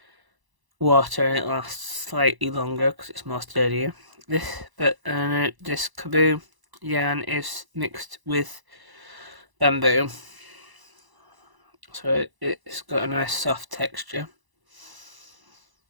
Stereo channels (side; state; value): left; late; 1.0 ms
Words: water and it lasts slightly longer because it's more sturdier. This Kaboo yarn is mixed with bamboo, so it's got a nice soft texture.